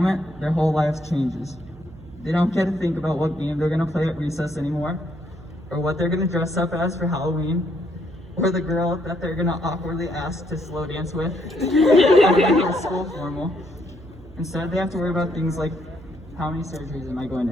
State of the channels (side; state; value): right; noise; hum, 19 dB below the sound